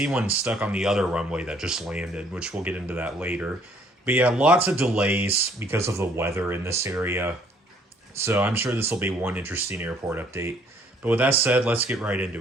one stuck on the other runway that just landed, which we'll get into that later. But yeah, lots of delays because of the weather in this area. So I'm sure this will be one interesting airport update. But with that said, let's get right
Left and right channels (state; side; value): normal; both; correlation 0.62